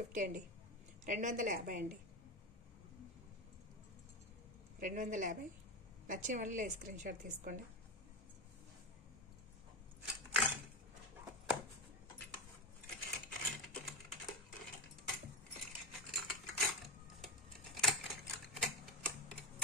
అండి. 250 అండి. 250. నచ్చిన వాళ్ళు స్క్రీన్ షాట్ తీసుకోండి.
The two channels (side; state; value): both; normal; correlation 0.15